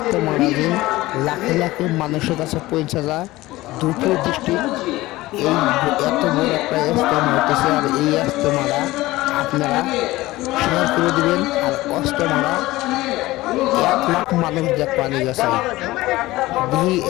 যে লাখে লাখে মানুষের কাছে পৌঁছে যায়। দক্ষিণ ডিস্ট্রিক্ট এই এত বড় একটা ইজতেমা হইতেছে, আর এই ইজতেমাটা আপনারা শেয়ার করে দেবেন। আর ইজতেমাটা 1 লাখ মানুষ দেখতে নিয়ে গেছে। এই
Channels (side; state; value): right; quieter; 18.4 dB